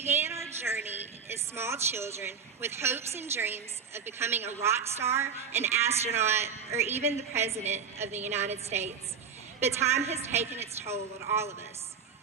our journey as small children with hopes and dreams of becoming a rock star, an astronaut, or even the President of the United States. But time has taken its toll on all of us.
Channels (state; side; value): quieter; left; 6.5 dB